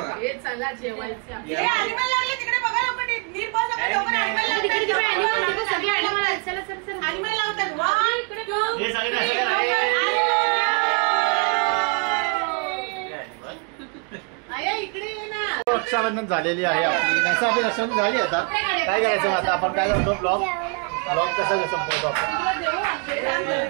रक्षाबंधन झालेली आहे आपली. नसा आपली रक्षाबंधन झाली. आता काय करायचं आता आपण काय करतो ब्लॉग कसा संपवतो आपण.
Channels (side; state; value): left; quieter; 36.7 dB